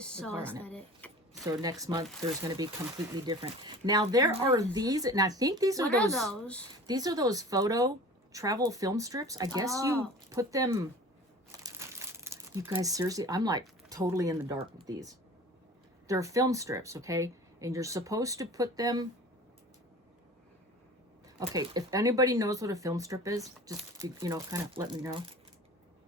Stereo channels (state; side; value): normal; both; correlation 0.41